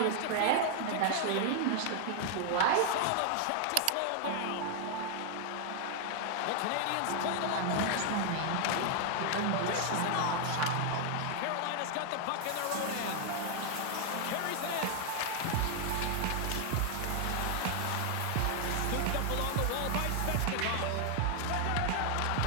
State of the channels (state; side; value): different; both; correlation 0.00